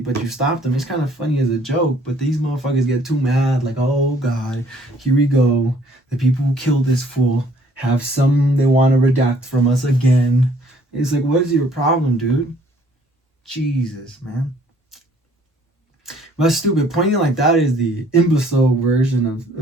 you stopped him. It's kind of funny as a joke, but these motherfuckers get too mad, like, oh God, here we go. The people who killed this fool have some they want to redact from us again. It's like, what is your problem, dude? Jesus, man. That's stupid. Pointing like that is the imbecile version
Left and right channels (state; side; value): normal; both; correlation 0.59